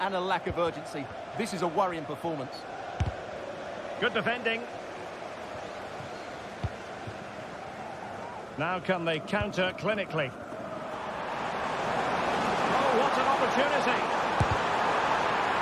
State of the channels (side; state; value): both; identical; correlation 1.00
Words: and a lack of urgency. This is a worrying performance. Good defending. Now can they counter clinically? Oh, what an opportunity!